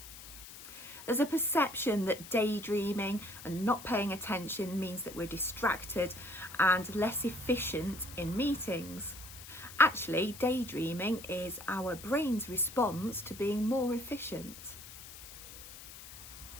There's a perception that daydreaming and not paying attention means that we're distracted and less efficient in meetings. Actually, daydreaming is our brain's response to being more efficient.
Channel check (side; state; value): left; noise; hiss, 15 dB below the sound